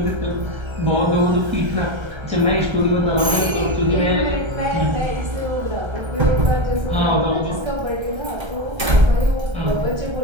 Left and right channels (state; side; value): late; left; 1.3 ms